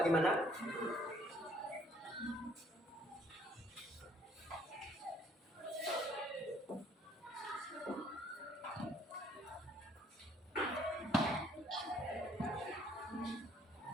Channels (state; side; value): normal; both; correlation 0.63